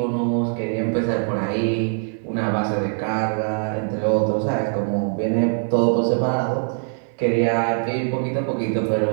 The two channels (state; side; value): silent; left; 59 dB below the other